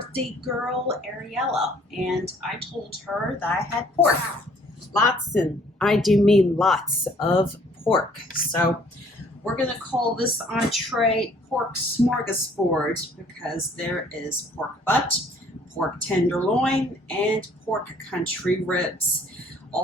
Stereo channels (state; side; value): normal; both; correlation 0.59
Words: girl Ariella, and I told her that I had pork. Lots, and I do mean lots of pork. So we're gonna call this entree pork smorgasbord because there is pork butt, pork tenderloin, and pork country ribs,